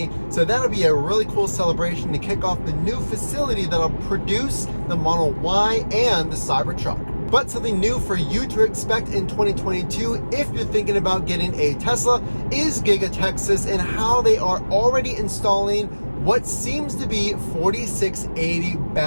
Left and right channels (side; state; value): both; inverted; correlation -1.00